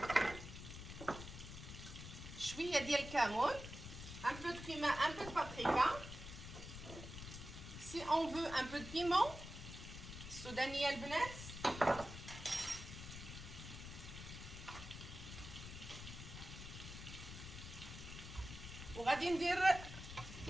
شويه ديال الكمون، un peu de cumin, un peu de paprika. Si on veut un peu de piment السودانيه البنات. وغادي ندير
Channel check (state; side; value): noise; left; rumble, 10 dB below the sound